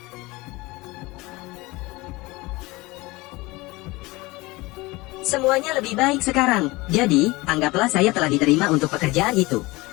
Semuanya lebih baik sekarang. Jadi, anggaplah saya telah diterima untuk pekerjaan itu.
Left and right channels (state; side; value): quieter; right; 22.0 dB